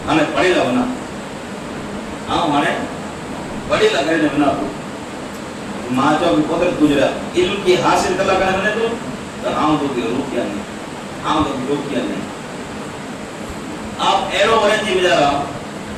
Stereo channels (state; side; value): identical; both; correlation 1.00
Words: ہمیں پڑھے گا بنا آؤں ہمیں پڑھے گا گھر بنا تو ماں چاہو کہ قدرت گزرا علم کی حاصل کرنا کرنے بنے تو آؤں تو کہ روکیا نہیں آؤں تو کہ روکیا نہیں آپ ایرو برن جی بجا رہا